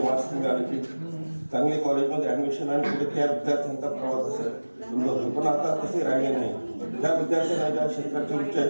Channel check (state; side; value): inverted; both; correlation -1.00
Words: मार्क्स मिळाले की चांगले कॉलेजमध्ये ॲडमिशन आणि पुढे त्या विद्यार्थ्यांचा प्रवास असेल समजतो. पण आता तसे राहिले नाही. ज्या विद्यार्थ्यांना ज्या क्षेत्राची रुची